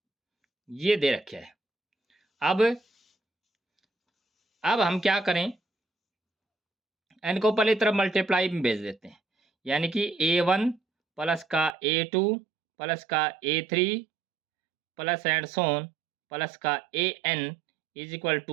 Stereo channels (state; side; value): drops out; left; at 11.8 s